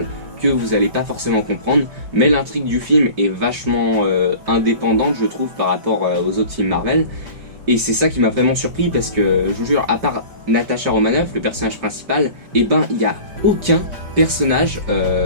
que vous allez pas forcément comprendre, mais l'intrigue du film est vachement indépendante je trouve par rapport aux autres films Marvel. Et c'est ça qui m'a vraiment surpris parce que, je vous jure, à part Natasha Romanoff, le personnage principal, il n'y a aucun personnage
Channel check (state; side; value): late; left; 5.1 ms